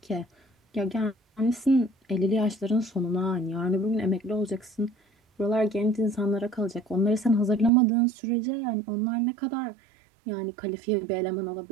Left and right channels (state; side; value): drops out; left; at 7.7 s